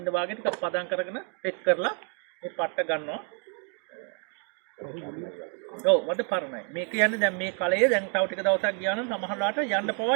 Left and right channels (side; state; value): left; quieter; 39.0 dB